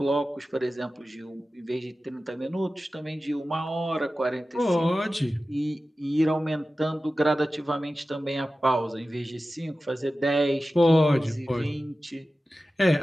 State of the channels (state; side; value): normal; both; correlation 0.95